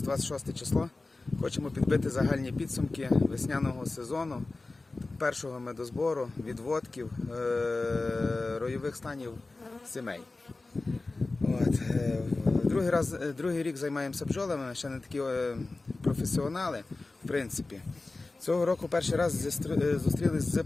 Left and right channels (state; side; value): quieter; right; 3.3 dB